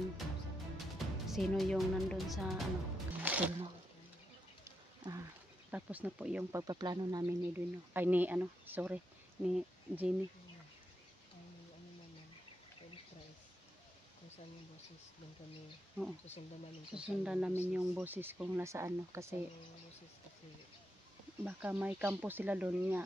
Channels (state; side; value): normal; both; correlation 0.84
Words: sino yung nandun sa tulno. Tapos na po yung pagpaplano namin ni Edwin, no? Ay ni Jenny. Kung saan yung boses, doon kami susundan namin yung boses kung nasaan, no? Kasi baka may kampo sila doon